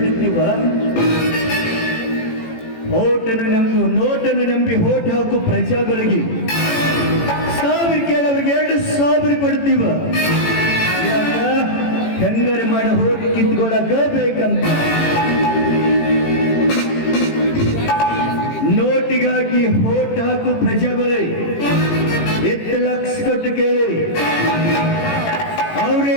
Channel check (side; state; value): right; late; 18 ms